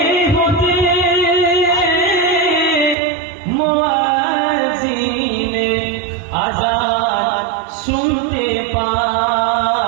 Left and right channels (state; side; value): drops out; left; at 3.0 s